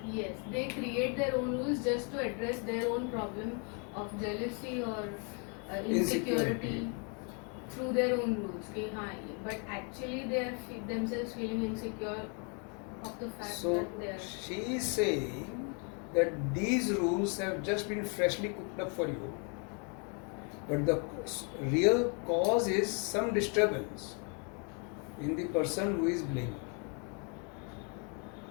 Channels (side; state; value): right; quieter; 37.2 dB